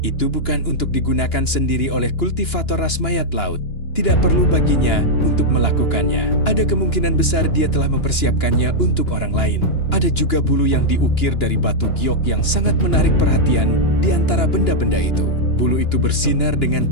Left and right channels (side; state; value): right; late; 2.9 ms